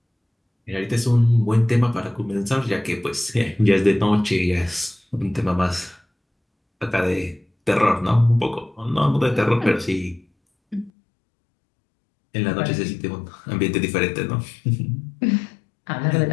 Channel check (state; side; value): drops out; right; at 10.9 s